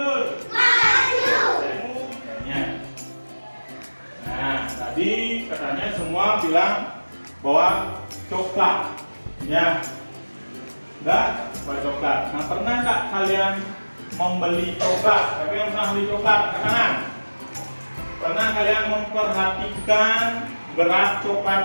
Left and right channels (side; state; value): both; inverted; correlation -1.00